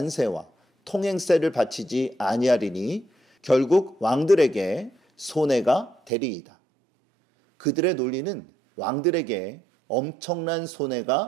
통행세를 바치지 아니하리니 결국 왕들에게 손해가 되리이다. 그들의 논리는 왕들에게 엄청난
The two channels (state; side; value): drops out; left; at 6.1 s